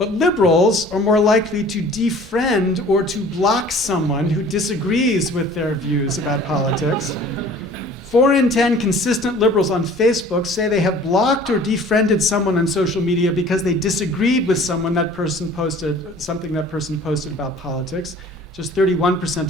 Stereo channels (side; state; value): both; normal; correlation 0.48